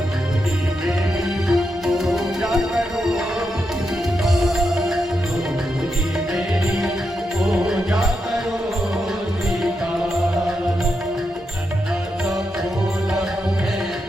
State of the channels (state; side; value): normal; both; correlation 0.85